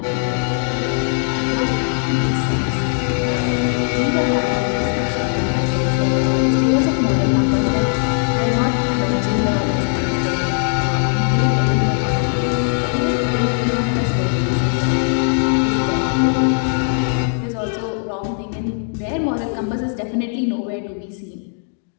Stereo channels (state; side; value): silent; right; digital silence